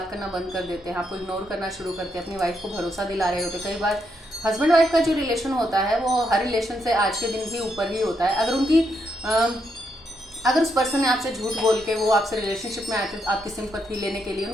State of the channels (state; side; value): normal; both; correlation 0.79